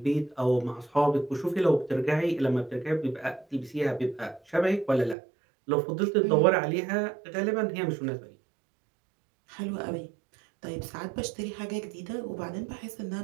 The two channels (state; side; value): drops out; left; at 5.2 s